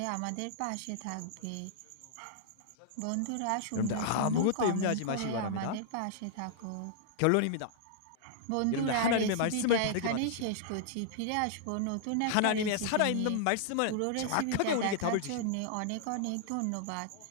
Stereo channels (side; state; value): both; different; correlation -0.01